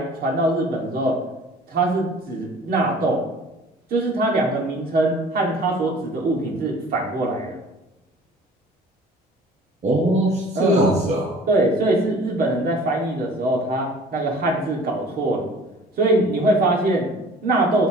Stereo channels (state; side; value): normal; both; correlation 0.48